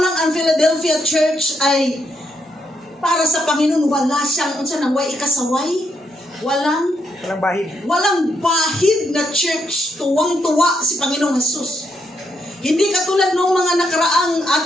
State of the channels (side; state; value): both; normal; correlation 0.78